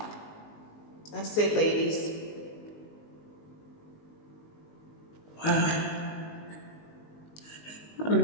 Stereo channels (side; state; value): right; late; 19 ms